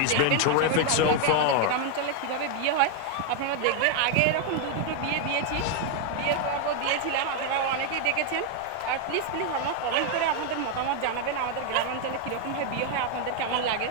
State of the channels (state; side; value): different; both; correlation 0.00